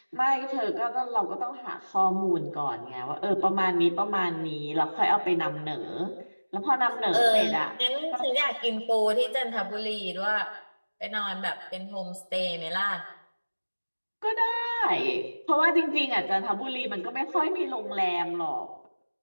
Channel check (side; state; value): both; inverted; correlation -1.00